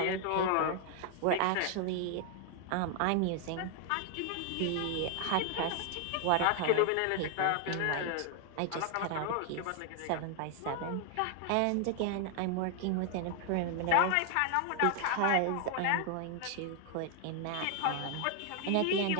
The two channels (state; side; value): different; both; correlation 0.00